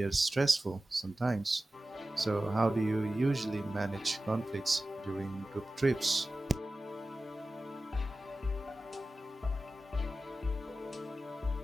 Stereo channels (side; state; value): both; normal; correlation 0.95